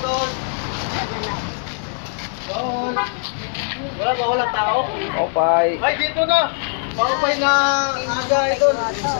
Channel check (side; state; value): right; silent; 58 dB below the other